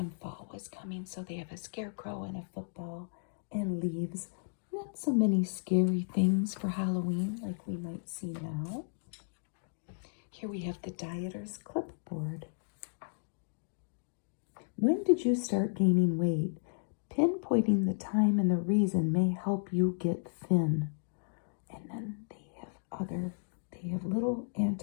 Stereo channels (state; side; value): silent; right; digital silence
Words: fall was coming, so they have a scarecrow and a football and leaves. Not so many scary things for Halloween like we might see now. Here we have the Dieter's Clipboard. When did you start gaining weight? Pinpointing the time and the reason may help you get thin. And then they have little